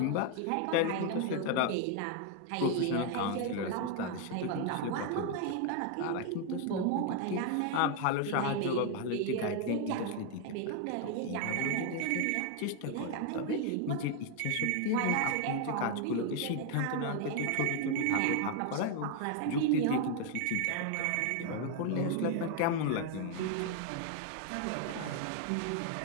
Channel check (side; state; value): both; different; correlation 0.01